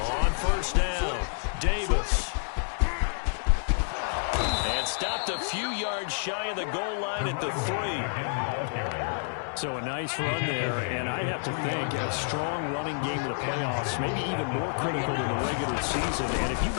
On first down, Davis. And stopped a few yards shy of the goal line at the 3. So a nice run there, and I have to think a strong running game in the playoffs, maybe even more critical than the regular season. And if you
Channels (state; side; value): silent; right; digital silence